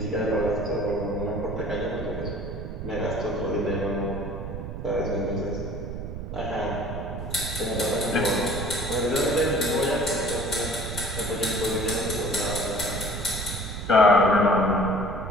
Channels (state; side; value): noise; right; rumble, 7 dB below the sound